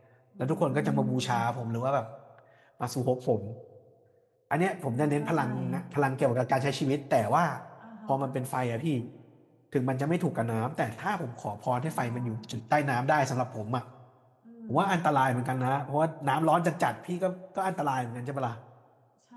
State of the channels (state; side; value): identical; both; correlation 1.00